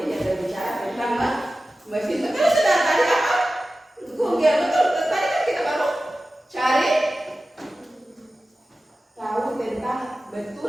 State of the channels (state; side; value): normal; both; correlation 0.95